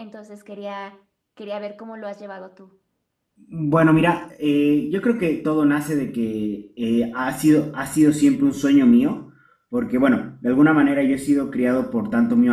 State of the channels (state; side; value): identical; both; correlation 1.00